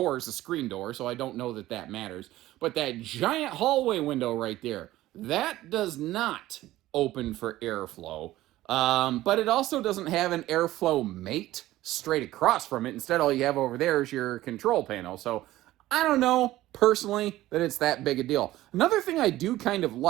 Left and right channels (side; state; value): left; quieter; 15.7 dB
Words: is a screen door, so I don't know that that matters. But that giant hallway window right there, that does not open for airflow, but it also doesn't have an airflow mate straight across from it. Instead, all you have over there is your control panel. So I don't know, personally, that it's that big a deal. Another thing I do kind of